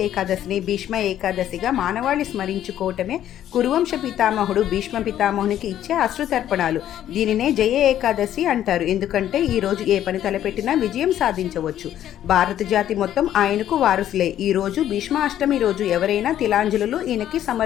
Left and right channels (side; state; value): right; quieter; 11.4 dB